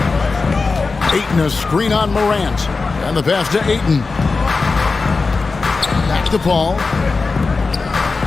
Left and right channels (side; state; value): right; quieter; 4.1 dB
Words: Ayton a screen on Morant. And the pass to Ayton. Back to Paul.